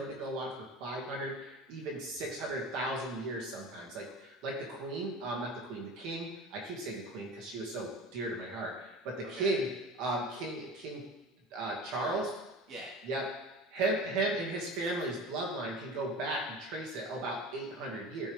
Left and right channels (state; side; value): normal; both; correlation 0.35